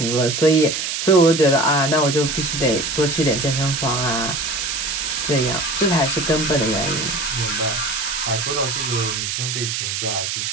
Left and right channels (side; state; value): right; noise; hiss, 2 dB below the sound